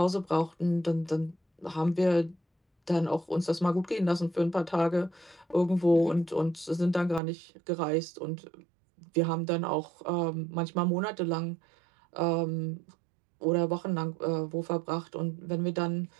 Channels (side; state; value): left; drops out; at 7.2 s